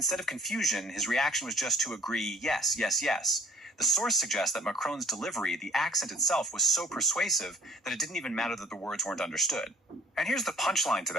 of confusion, his reaction was just to agree, yes, yes, yes. The source suggests that Macron's delivery, the accent itself, was so persuasive that it didn't even matter that the words weren't understood. And here's the punchline to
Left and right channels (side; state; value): both; normal; correlation 0.56